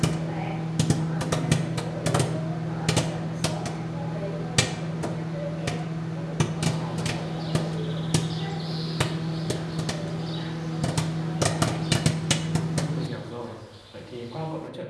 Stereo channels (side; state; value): both; identical; correlation 1.00